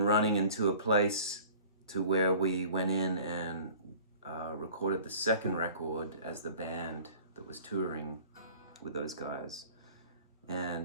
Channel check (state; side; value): inverted; both; correlation -0.47